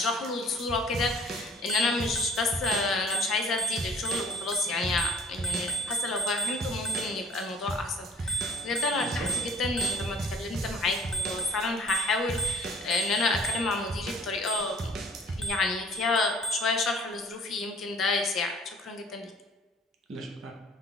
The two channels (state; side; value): normal; both; correlation 0.55